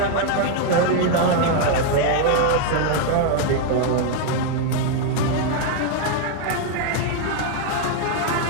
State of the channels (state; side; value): different; both; correlation 0.00